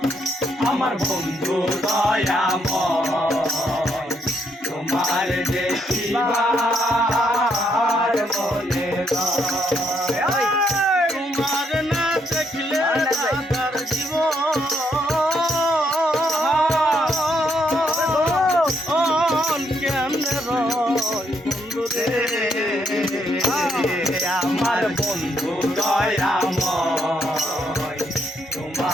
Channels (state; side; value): normal; both; correlation 0.74